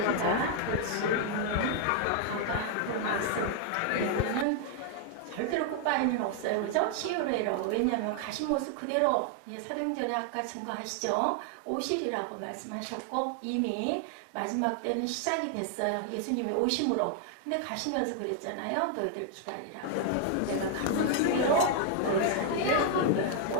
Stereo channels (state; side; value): different; both; correlation 0.00